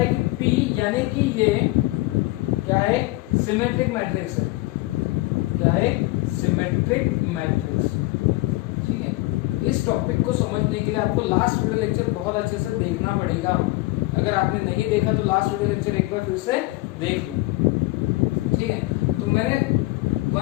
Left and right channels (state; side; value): quieter; right; 20.6 dB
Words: कि p यानी कि ये क्या है, सिमेट्रिक मैट्रिक्स है, क्या है, सिमेट्रिक मैट्रिक्स, ठीक है। इस टॉपिक को समझने के लिए आपको लास्ट वीडियो लेक्चर बहुत अच्छे से देखना पड़ेगा। अगर आपने नहीं देखा तो लास्ट वीडियो लेक्चर एक बार फिर से देख लो, ठीक है। तो मैंने